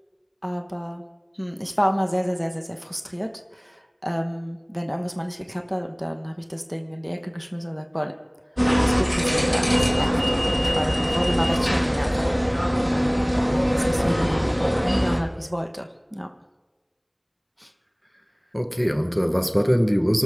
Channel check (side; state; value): both; identical; correlation 1.00